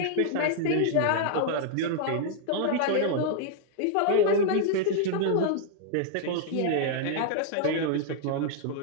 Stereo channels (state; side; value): different; both; correlation -0.01